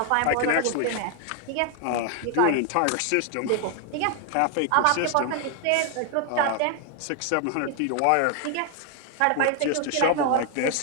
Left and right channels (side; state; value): both; different; correlation 0.00